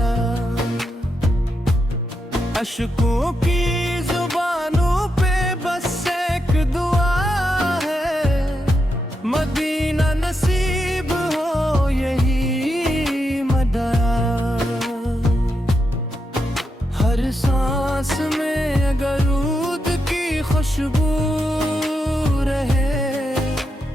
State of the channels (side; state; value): both; normal; correlation 0.84